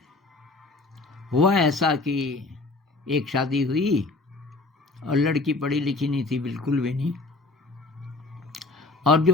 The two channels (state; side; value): quieter; right; 3.3 dB